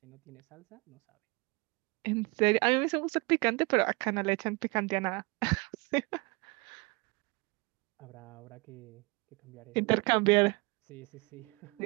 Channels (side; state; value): left; quieter; 27.7 dB